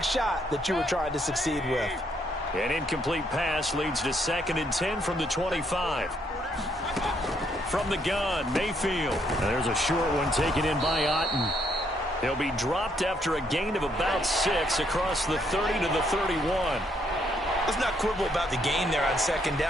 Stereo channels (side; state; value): both; normal; correlation 0.72